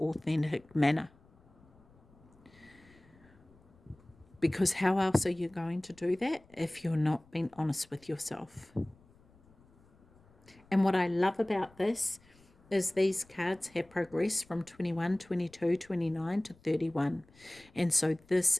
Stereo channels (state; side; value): noise; left; rumble, 28 dB below the sound